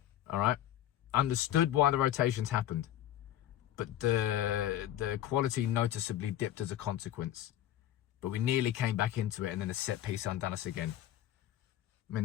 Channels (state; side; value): quieter; right; 12.3 dB